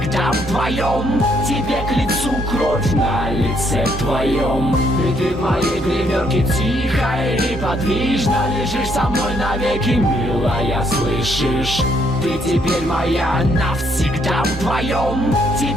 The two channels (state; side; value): normal; both; correlation 0.71